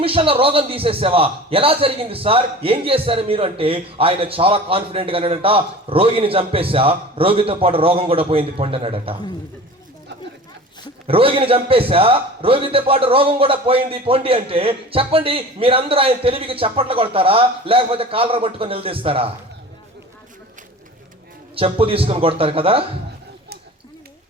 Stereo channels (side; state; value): both; normal; correlation 0.39